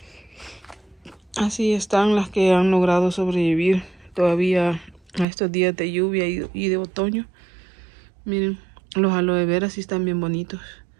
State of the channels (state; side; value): drops out; left; at 5.2 s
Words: Así están las que han logrado sobrevivir todavía a estos días de lluvia y de otoño. Miren, los aloe vera sí están bien bonitos.